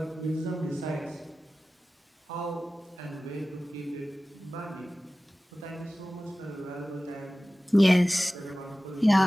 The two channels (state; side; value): normal; both; correlation 0.96